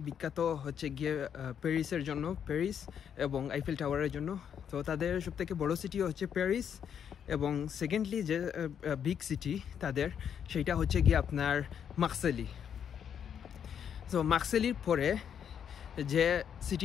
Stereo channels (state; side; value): quieter; right; 8.3 dB